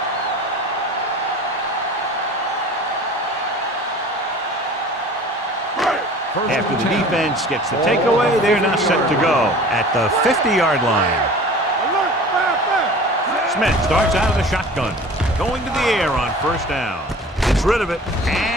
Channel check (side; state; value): both; normal; correlation 0.42